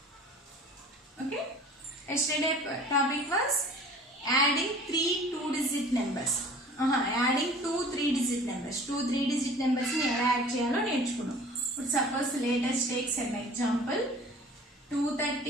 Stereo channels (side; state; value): both; normal; correlation 0.46